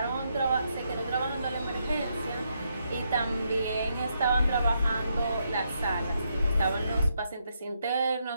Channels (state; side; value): inverted; both; correlation -0.79